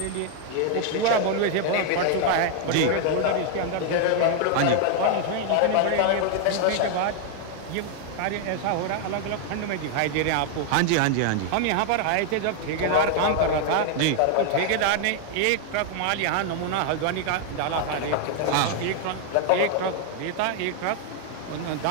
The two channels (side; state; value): both; different; correlation 0.00